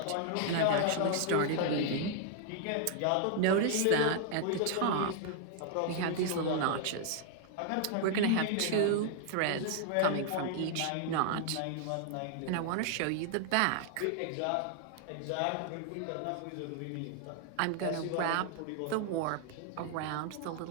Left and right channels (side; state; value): both; different; correlation 0.00